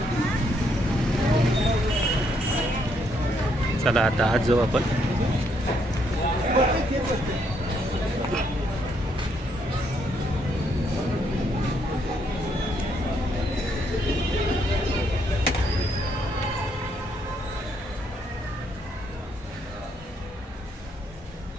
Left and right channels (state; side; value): normal; both; correlation 0.73